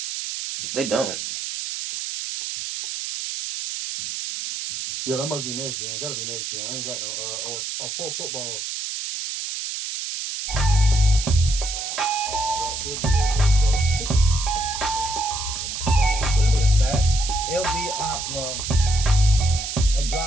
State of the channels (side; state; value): right; noise; hiss, 5 dB below the sound